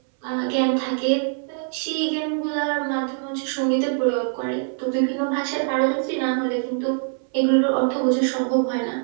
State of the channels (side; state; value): left; silent; 62 dB below the other